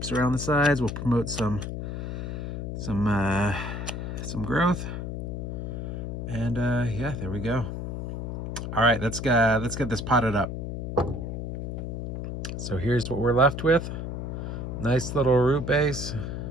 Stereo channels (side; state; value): left; noise; hum, 5 dB below the sound